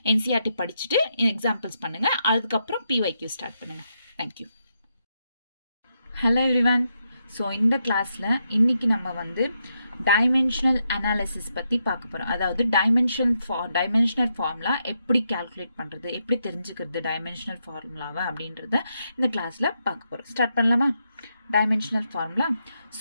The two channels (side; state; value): both; inverted; correlation -0.82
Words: என்சிஆர்டி படிச்சுட்டு எக்ஸாம்பிள்ஸ் பண்ணுங்க, அதுக்கப்புறம் பிஒய்க்யூ ஸ்டார்ட் பண்ணுங்க. தேங்க்யூ. Hello everyone. ஸோ இந்த கிளாஸில் இன்னைக்கு நம்ம வந்து டைமென்ஷனல் அனாலிசிஸ் பற்றி பார்க்க போகிறோம். அதாவது டைமென்ஷனல் ஃபார்முலா எப்படி கால்குலேட் பண்ணுறது, எப்படி தெரிஞ்சுக்கிறது டைமென்ஷனல் ஃபார்முலாவை அப்படின்றத இந்த கிளாஸில் பார்க்க போகிறோம். ஸ்டார்ட் பண்ணலாமா? Dimensional formula.